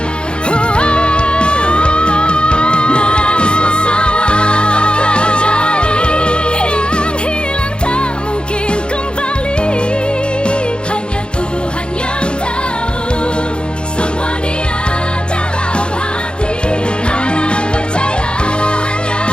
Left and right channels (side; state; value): right; late; 0.054 ms